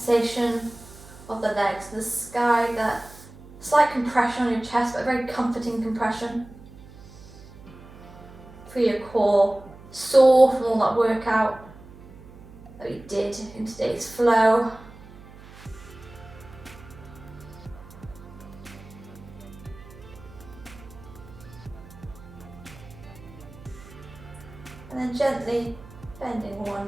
of the legs, the sky, that slight compression on your chest, but a very comforting compression. For your core, sore from all that workout that we did in today's flow. And then gently bending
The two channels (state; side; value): noise; right; hum, 19 dB below the sound